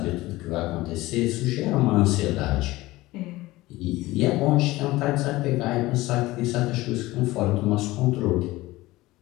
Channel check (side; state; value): right; quieter; 18.8 dB